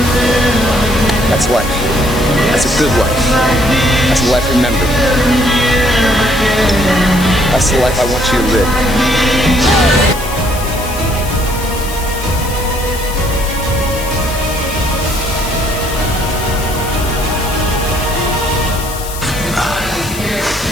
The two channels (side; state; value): left; noise; hiss, 11 dB below the sound